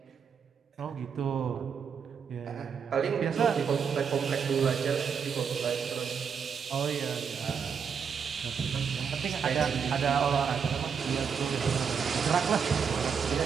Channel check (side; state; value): left; quieter; 6.6 dB